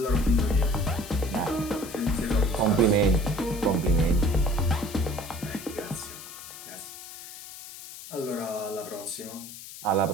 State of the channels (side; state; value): left; noise; hiss, 14 dB below the sound